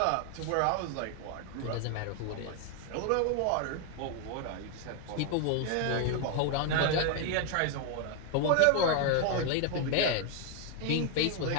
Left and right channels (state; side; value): different; both; correlation 0.01